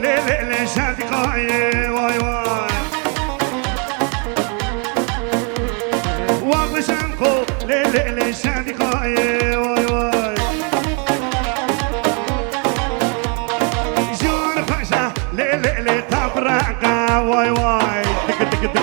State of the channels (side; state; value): left; quieter; 36.9 dB